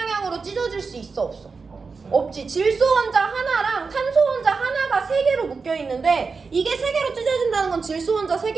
찢어질 수 있어, 없어? 없지. 질소 원자 하나랑 탄소 원자 하나가 3개로 묶여 있는데 이게 3개로 찢어진다는 건 질소 원자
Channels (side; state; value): left; quieter; 4.7 dB